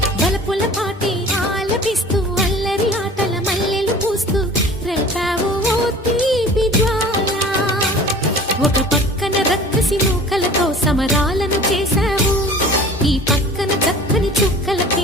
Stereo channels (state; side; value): normal; both; correlation 0.44